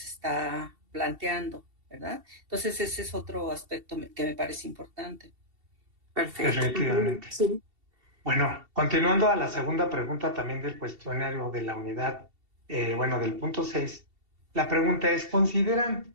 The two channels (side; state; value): left; late; 2.7 ms